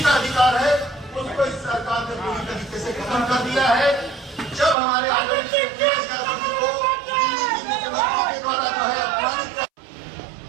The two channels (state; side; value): drops out; left; at 4.8 s